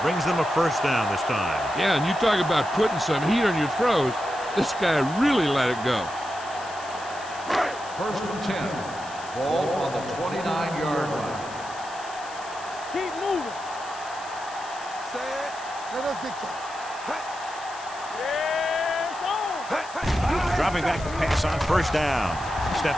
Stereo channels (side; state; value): left; noise; hiss, 17 dB below the sound